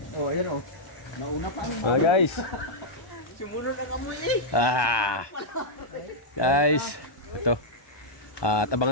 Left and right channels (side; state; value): right; late; 1.1 ms